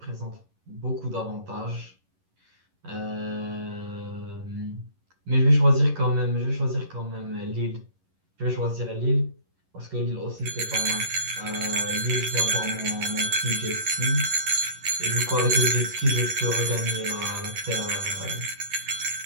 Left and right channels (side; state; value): left; late; 11 ms